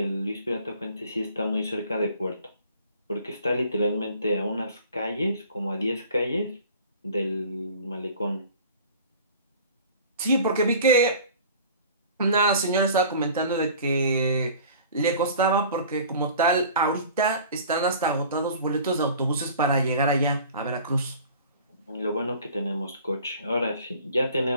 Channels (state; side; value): inverted; both; correlation -0.45